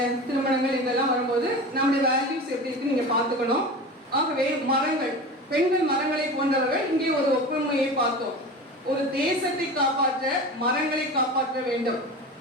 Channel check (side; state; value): both; normal; correlation 0.31